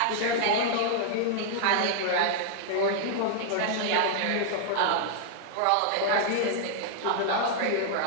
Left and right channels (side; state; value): both; different; correlation -0.01